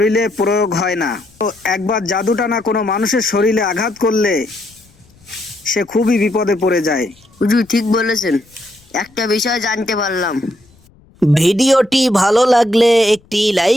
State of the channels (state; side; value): noise; left; rumble, 30 dB below the sound